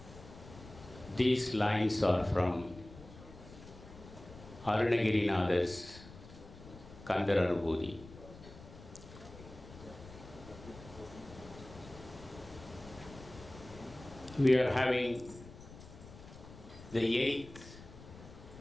These lines are from Arunagirinath's Kandaranubhuti. We are having the 8th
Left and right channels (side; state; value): left; noise; rumble, 17 dB below the sound